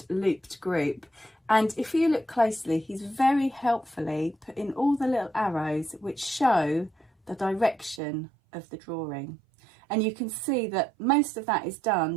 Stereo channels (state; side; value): drops out; left; at 8.0 s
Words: Looped Group. And if you look closely, he's very helpfully put in all the little arrows which show the direction of the drawing. And you can see that most of that is